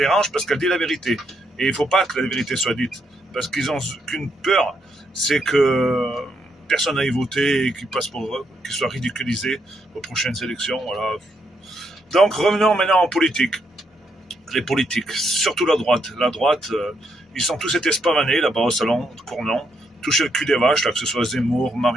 parce qu'elle dit la vérité. Et il ne faut pas que la vérité soit dite, parce qu'ils ont qu'une peur, c'est que personne n'aille voter et qu'ils soient ridiculisés aux prochaines élections. Voilà. Donc revenons maintenant en politique. Les politiques, surtout la droite. La droite, ils sont tous été spavanés là-bas au salon de Cournon, toucher le cul des vaches, là, que ce soit Zemmour,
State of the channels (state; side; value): normal; both; correlation 0.77